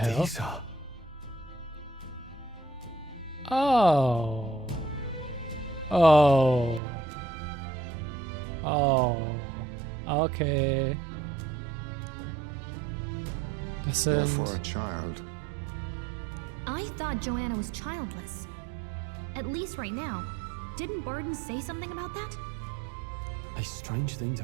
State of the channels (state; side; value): drops out; left; at 6.8 s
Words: Dieser. Oh. Oh. Oh. Okay. Das sind... Therefore a child. I thought Joanna was childless. At least right now. Didn't Burden say something about that? A strange thing